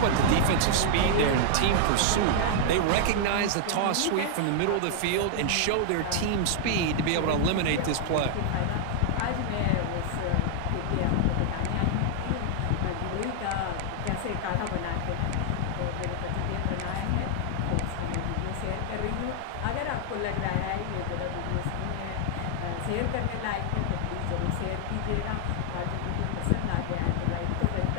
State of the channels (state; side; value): different; both; correlation -0.01